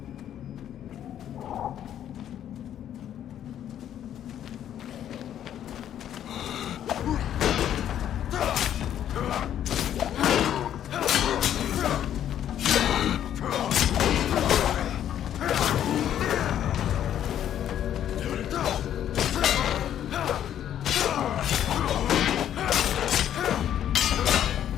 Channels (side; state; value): right; quieter; 10.5 dB